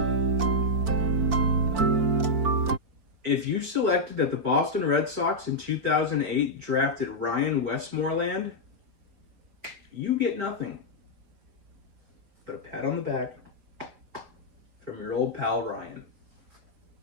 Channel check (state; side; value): late; left; 4.5 ms